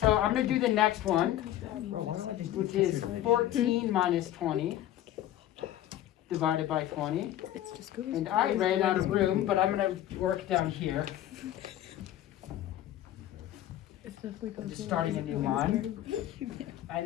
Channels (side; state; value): right; quieter; 12.9 dB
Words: I'm gonna do the next one, which is 14 minus 20 divided by 20. And I ran out of room, but I'm gonna work down here. I'm just starting a new line.